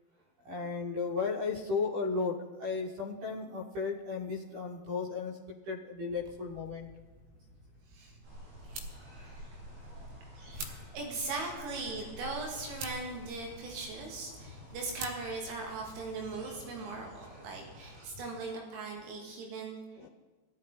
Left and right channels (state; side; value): late; left; 18 ms